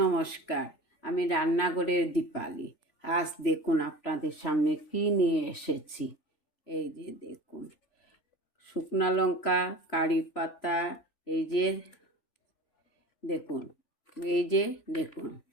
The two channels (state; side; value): late; right; 3.4 ms